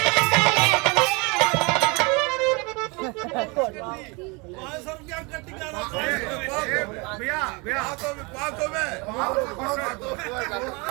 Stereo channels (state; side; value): quieter; left; 28.6 dB